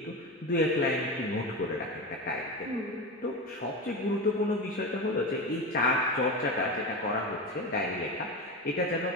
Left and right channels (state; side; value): normal; both; correlation 0.22